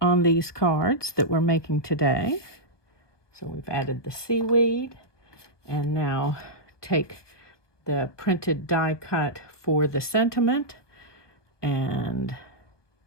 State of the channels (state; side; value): late; right; 1.4 ms